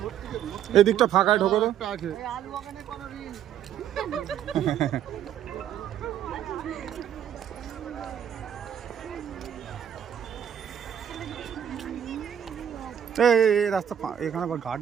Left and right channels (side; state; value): left; quieter; 9.5 dB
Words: এদিকটা ফাঁকায় ঢোকো তো। এই রাস্তা এখানে আবার গার্ড